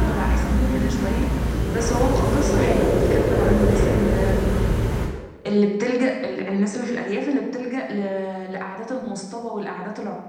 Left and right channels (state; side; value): identical; both; correlation 1.00